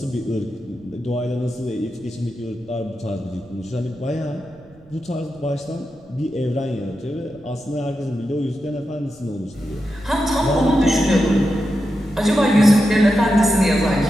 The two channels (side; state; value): right; noise; rumble, 25 dB below the sound